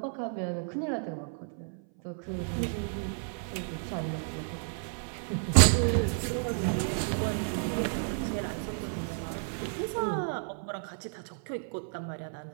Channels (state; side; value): silent; left; 57 dB below the other